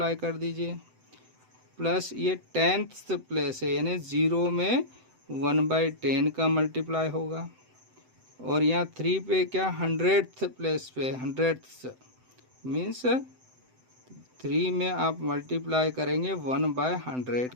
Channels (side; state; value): left; late; 7.9 ms